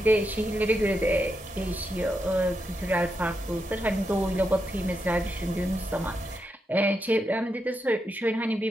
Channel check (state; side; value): normal; both; correlation 0.84